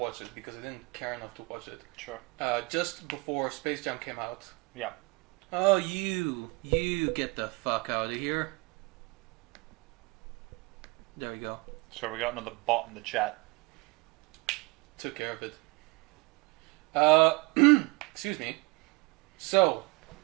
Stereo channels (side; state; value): left; quieter; 26.1 dB